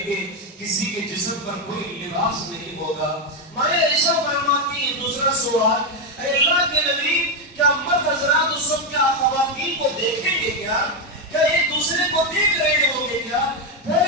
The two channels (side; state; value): both; normal; correlation 0.06